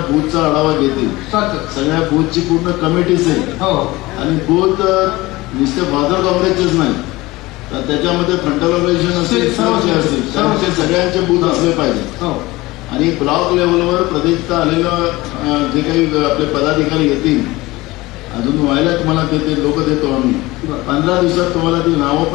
बूथचा आढावा घेतील. सगळ्या बूथची पूर्ण कमिटी असेल आणि बूथ नुसते फादर काँग्रेसचेच नाही तर त्याच्यामध्ये फ्रंटल ऑर्गनायझेशन असेल सर्वचे असतील सर्वचे सगळ्यांचे बूथ असले पाहिजे. आणि ब्लॉक लेवलवर प्रदेशचा आलेलं जे काही आपले पदाधिकारी येतील अजून व्हायला तुम्हाला ते लोक देतो आम्ही 15 दिवसात तुम्हाला ती नावं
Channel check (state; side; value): quieter; right; 20.2 dB